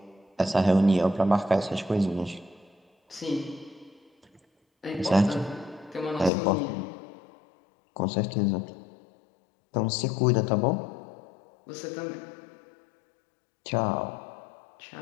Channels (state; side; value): drops out; right; at 6.3 s